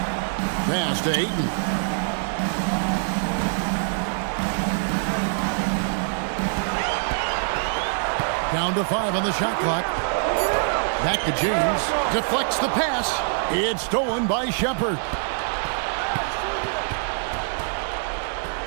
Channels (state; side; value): silent; left; digital silence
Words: Pass to Ayton. Down to 5 on the shot clock. Back to James. Deflects the pass. It's stolen by Shepard.